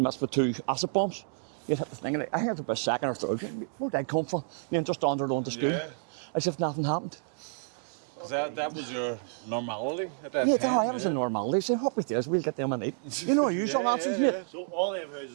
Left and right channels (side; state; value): left; silent; digital silence